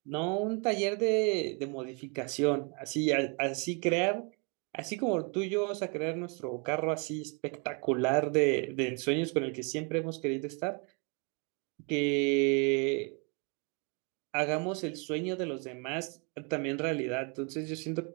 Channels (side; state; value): left; quieter; 34.2 dB